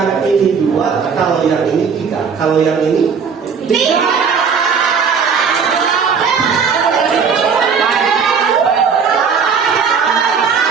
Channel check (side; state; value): left; quieter; 6.1 dB